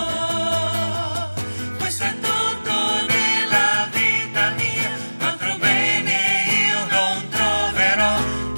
Questo è tutto della vita mia, altro bene io non troverò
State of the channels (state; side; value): inverted; both; correlation -1.00